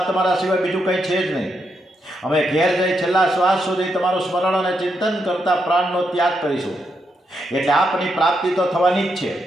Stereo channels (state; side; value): normal; both; correlation 0.81